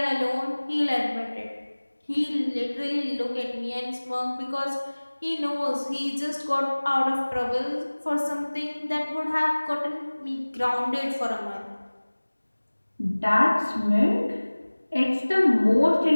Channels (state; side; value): inverted; both; correlation -1.00